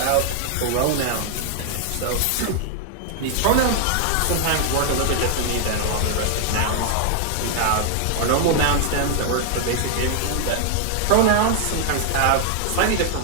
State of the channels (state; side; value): different; both; correlation 0.00